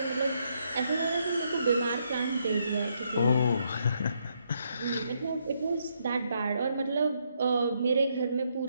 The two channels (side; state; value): both; inverted; correlation -0.76